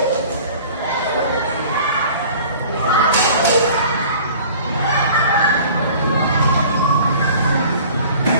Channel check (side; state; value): both; inverted; correlation -0.46